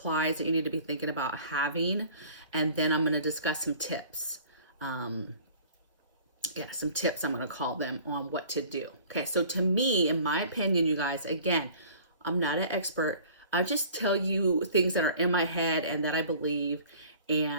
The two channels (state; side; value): inverted; both; correlation -0.48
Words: that you need to be thinking about having. And then I'm going to discuss some tips. Some tips, I'm going to call them, on what to do. Okay, so to me, in my opinion, you guys, again, I'm not an expert. I just tell you things that are in my head and that I believe,